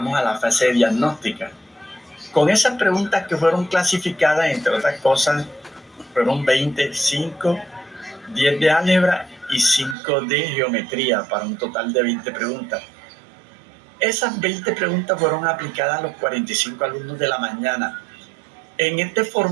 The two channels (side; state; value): left; drops out; at 10.0 s